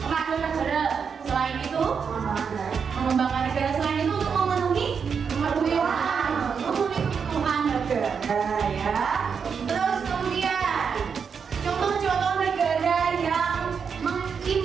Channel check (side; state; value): left; quieter; 6.4 dB